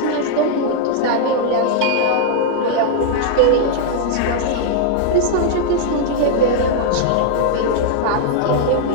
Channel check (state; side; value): different; both; correlation -0.01